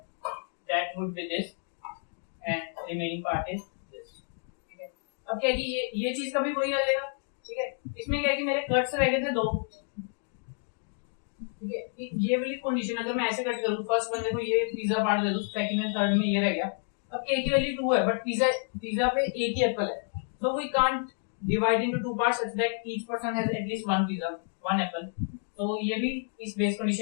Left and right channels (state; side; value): silent; right; 57 dB below the other